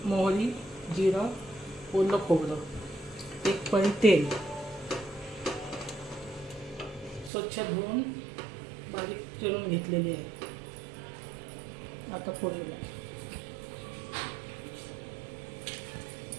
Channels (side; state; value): left; drops out; at 7.3 s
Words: मोहरी, जिरं, ओलं खोबरं, 1 पळी तेल, स्वच्छ धुवून बारीक चिरून घेतलेले आहे. आता फोडणीला